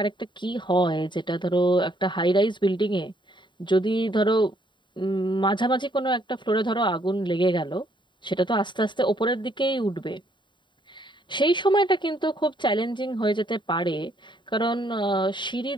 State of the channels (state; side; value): late; right; 0.23 ms